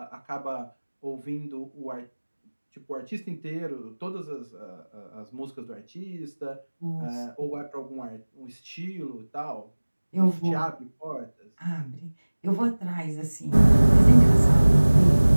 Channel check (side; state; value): both; inverted; correlation -1.00